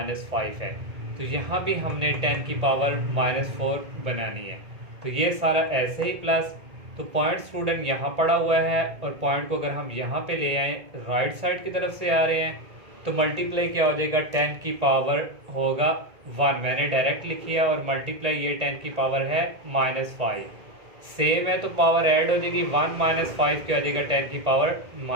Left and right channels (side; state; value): left; late; 1.9 ms